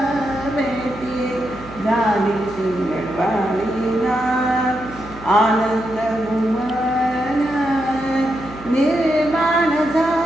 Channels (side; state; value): right; noise; hum, 18 dB below the sound